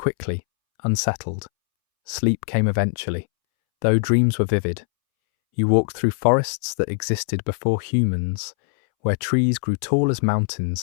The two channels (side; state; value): right; silent; 64 dB below the other